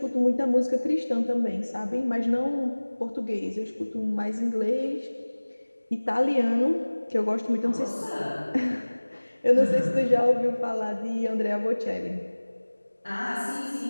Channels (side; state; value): both; inverted; correlation -1.00